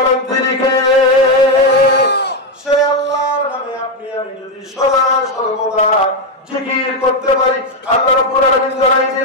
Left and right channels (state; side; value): normal; both; correlation 0.06